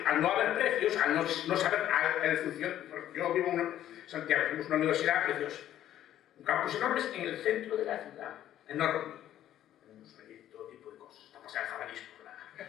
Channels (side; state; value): right; quieter; 11.9 dB